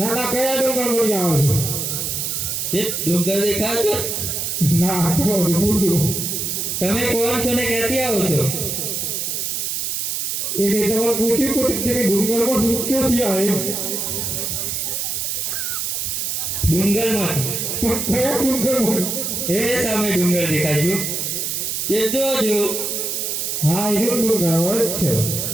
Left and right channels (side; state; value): right; noise; hiss, 2 dB below the sound